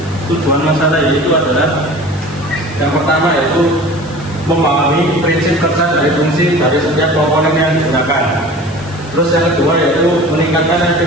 tujuan masalah yaitu adalah yang pertama yaitu memahami prinsip kerja dari fungsi dari setiap komponen yang digunakan. Terus yang kedua yaitu meningkatkan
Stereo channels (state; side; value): noise; left; hiss, 21 dB below the sound